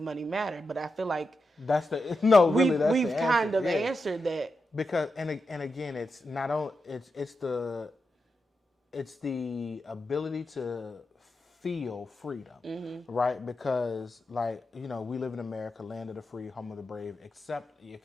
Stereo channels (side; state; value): both; normal; correlation 0.88